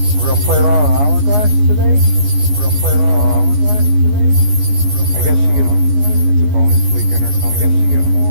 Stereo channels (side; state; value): left; late; 14 ms